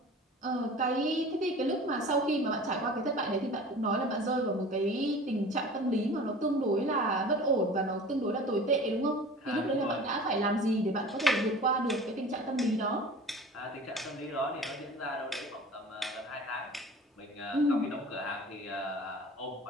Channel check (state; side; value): normal; both; correlation 0.41